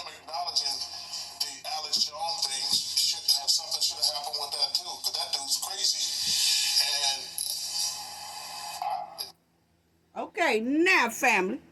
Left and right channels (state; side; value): identical; both; correlation 1.00